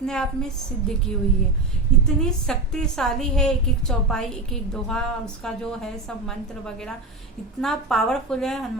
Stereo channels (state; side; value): quieter; left; 3.1 dB